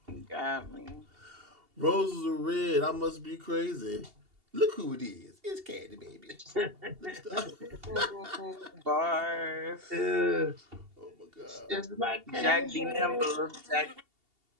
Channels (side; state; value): left; late; 2.8 ms